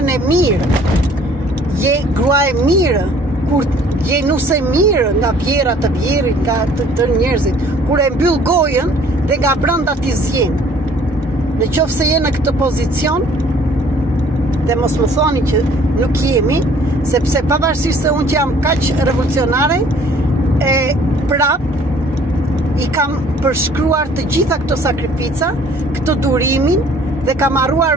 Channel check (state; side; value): normal; both; correlation 0.56